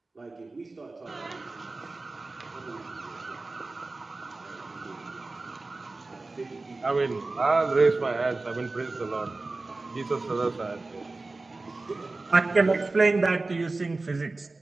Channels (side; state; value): left; quieter; 3.4 dB